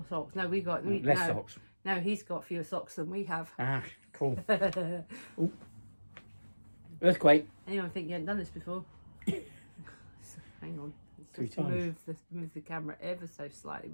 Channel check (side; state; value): both; inverted; correlation -1.00